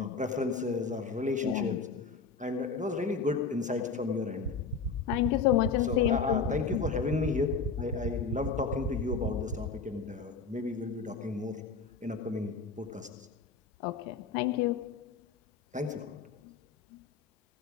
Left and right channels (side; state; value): right; quieter; 5.0 dB